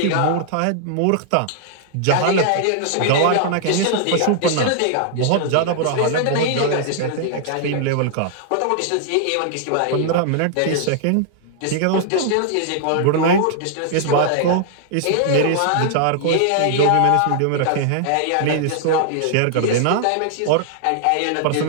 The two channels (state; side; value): different; both; correlation -0.01